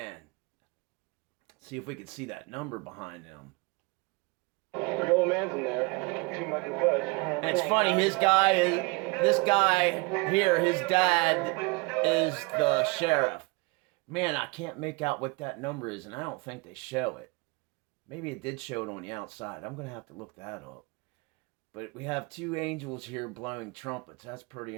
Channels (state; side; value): quieter; left; 27.7 dB